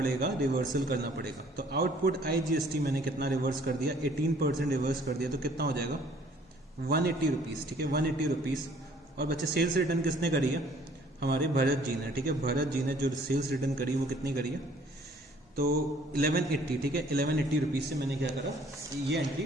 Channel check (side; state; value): both; normal; correlation 0.58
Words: रिवर्सल करना पड़ेगा। तो आउटपुट IGST मैंने कितना रिवर्स कर दिया, 18% रिवर्स कर दिया, तो कितना हो जाएगा 180 रुपीज़, ठीक है, 180 रुपीज़। और बच्चे सेल्स रिटर्न किसने करी है, हमारे भरत जी ने, ठीक है, भरत जी ने जो सेल्स रिटर्न करी वो कितनी करी है, तो 1180, ठीक है, 1180 रुपीज़ से मैंने क्या करा, ये एंट्री